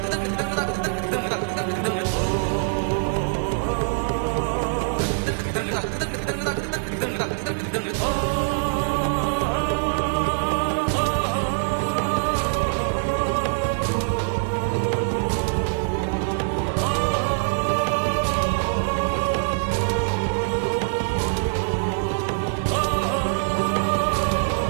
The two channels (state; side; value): silent; left; digital silence